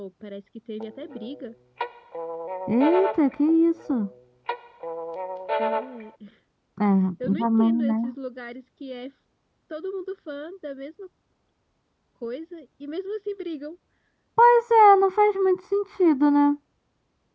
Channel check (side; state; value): both; identical; correlation 1.00